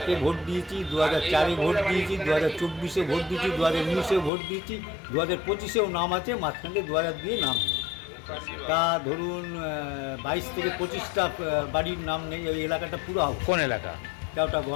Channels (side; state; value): right; drops out; at 4.3 s